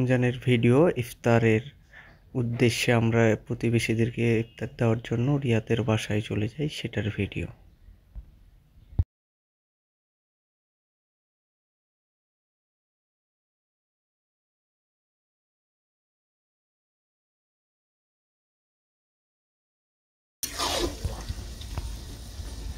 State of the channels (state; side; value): identical; both; correlation 1.00